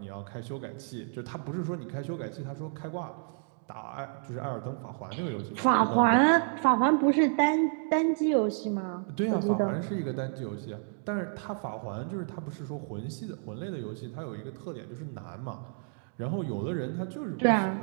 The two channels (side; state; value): left; silent; 57 dB below the other